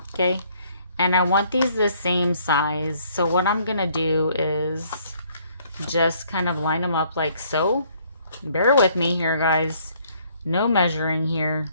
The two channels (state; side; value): inverted; both; correlation -0.63